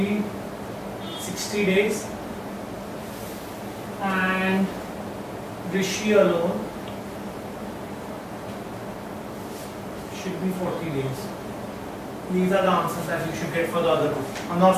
60 days and Rishi alone should be 40 days. These are the answers that you should get for the other two. I'm not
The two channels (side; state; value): both; identical; correlation 1.00